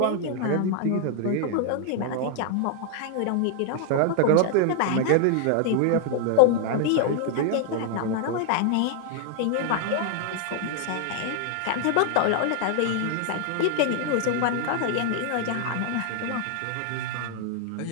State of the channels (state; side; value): different; both; correlation 0.00